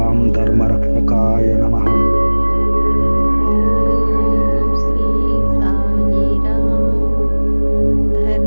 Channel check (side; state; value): both; inverted; correlation -1.00